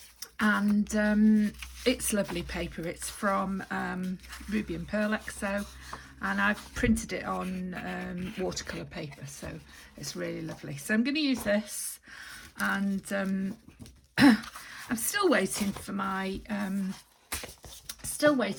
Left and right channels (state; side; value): identical; both; correlation 1.00